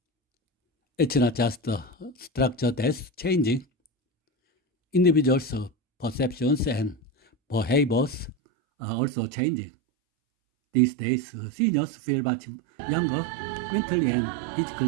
It's not just the structure that's changing. Individuals' perceptions and behaviors are also changing. These days, seniors feel much younger mentally and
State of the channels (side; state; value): left; drops out; at 8.3 s